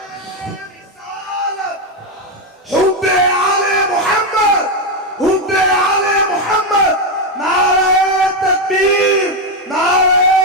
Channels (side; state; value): both; normal; correlation 0.07